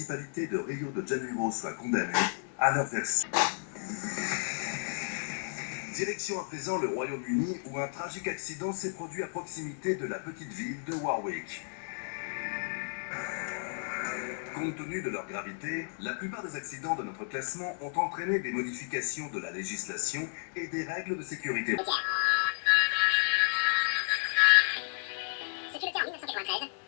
de Rio de Janeiro soit condamnée à leur version. Direction à présent le Royaume-Uni où un tragique accident s'est produit à proximité de la petite ville de Warwick. Compte tenu de leur gravité, la plupart des accidents de notre classement ont entraîné des modifications de la législation et des règles de sécurité. Ce fut le cas en 1993,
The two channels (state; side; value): silent; right; 56 dB below the other